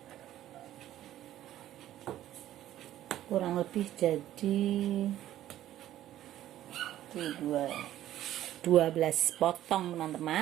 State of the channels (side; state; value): left; quieter; 13.0 dB